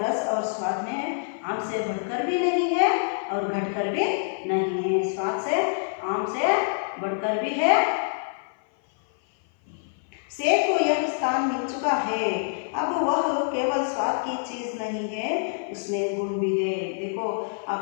और स्वाद में आम से बढ़कर भी नहीं है और घटकर भी नहीं है। स्वाद से आम से बढ़कर भी है। सेब को यह स्थान मिल चुका है। अब वह केवल स्वाद की चीज नहीं है, उसमें गुण भी है। देखो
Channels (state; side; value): silent; right; 56 dB below the other